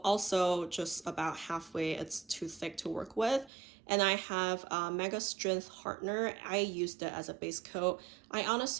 also just about halfway. It's too thick to work with. And I have Mega Strength Hardener. I used it as a base coat. I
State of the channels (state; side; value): drops out; left; at 3.5 s